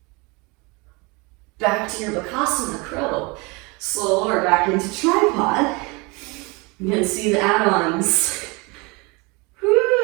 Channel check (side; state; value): left; quieter; 27.3 dB